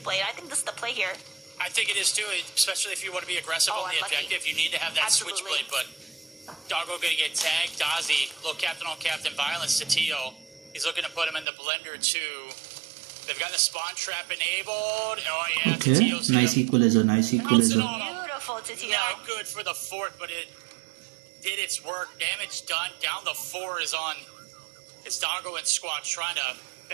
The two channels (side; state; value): left; drops out; at 11.5 s